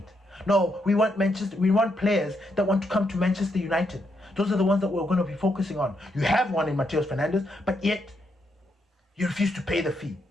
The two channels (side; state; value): both; normal; correlation 0.79